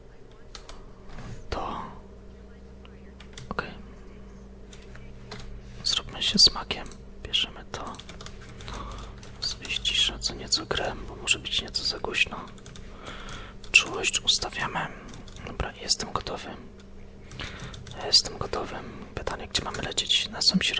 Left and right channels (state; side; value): identical; both; correlation 1.00